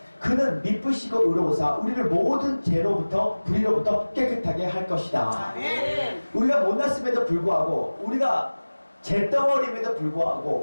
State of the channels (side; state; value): both; inverted; correlation -1.00